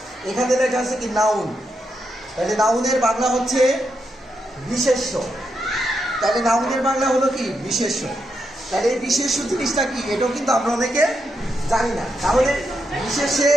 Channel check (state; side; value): normal; both; correlation 0.83